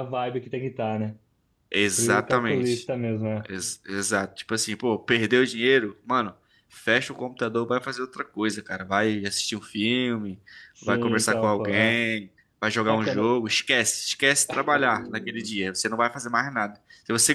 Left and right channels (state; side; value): identical; both; correlation 1.00